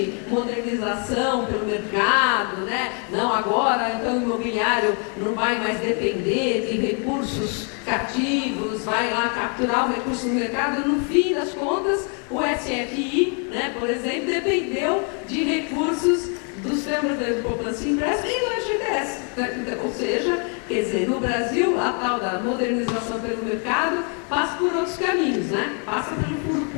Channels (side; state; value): right; quieter; 39.9 dB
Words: modernização pelo mercado, né? Não, agora então o imobiliário não vai mais depender de recursos cativos, vai lá capturar o recurso no mercado. No fim das contas, o SFI, né, por exemplo, dependeu de recursos do Sistema Brasileiro de Poupança e Empréstimo e do FGTS. Né? Ou seja, quer dizer, no Brasil, a tal da modernização pelo mercado passa por outros caminhos, né? Passa pelo fundo